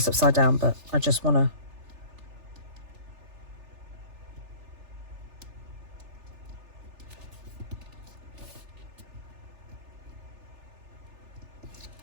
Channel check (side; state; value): left; late; 3.4 ms